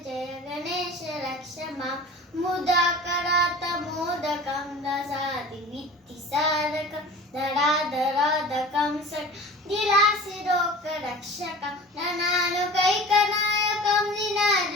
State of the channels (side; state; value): both; normal; correlation 0.39